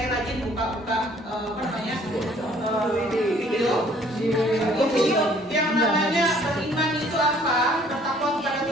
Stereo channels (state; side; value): normal; both; correlation 0.58